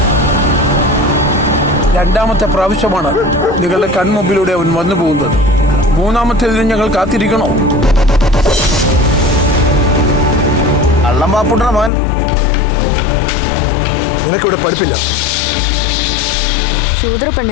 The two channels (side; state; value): right; drops out; at 11.9 s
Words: രണ്ടാമത്തെ പ്രാവശ്യമാണ് നിങ്ങളുടെ കൺമുമ്പിലൂടെ അവൻ വന്നു പോകുന്നത്. മൂന്നാമത്തേതിന് ഞങ്ങൾ കാത്തിരിക്കണോ? അള്ളംപാപ്പുട്ടണ മോൻ, നിനക്കിവിടെ പഠിപ്പില്ല.